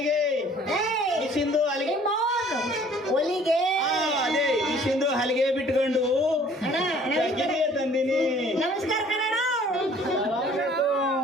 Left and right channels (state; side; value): normal; both; correlation 0.55